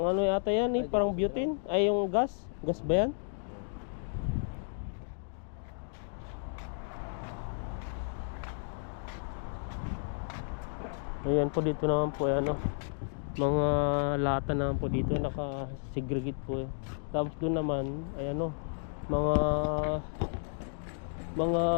ano yata yan eh, parang butane. Ay yung gas. Gas ba yan? Ayan po dito naman po ano, mga lata naman po dito naka-segregate po eh. Tapos doon naman ay ano, mga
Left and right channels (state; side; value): silent; right; digital silence